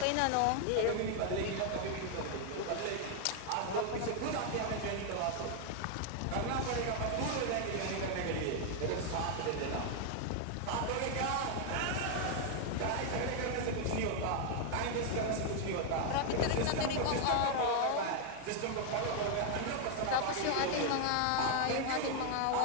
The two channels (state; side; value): different; both; correlation 0.00